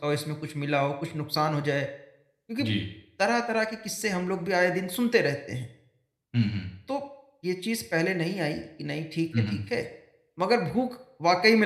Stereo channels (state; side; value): identical; both; correlation 1.00